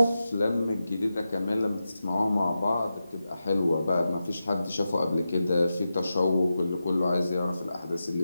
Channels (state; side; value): inverted; both; correlation -0.91